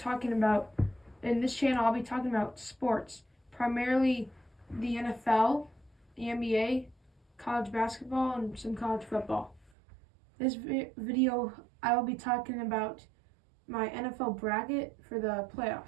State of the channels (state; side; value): drops out; left; at 9.7 s